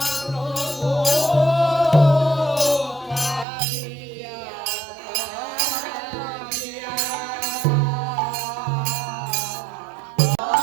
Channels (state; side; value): drops out; left; at 3.5 s